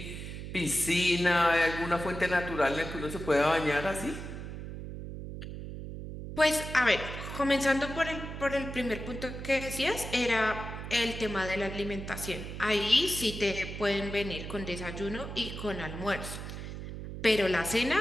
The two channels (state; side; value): noise; right; hum, 8 dB below the sound